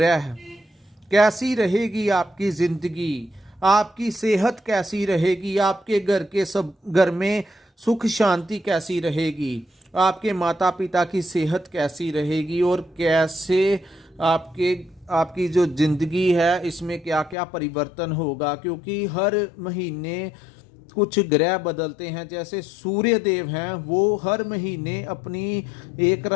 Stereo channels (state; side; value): drops out; right; at 17.4 s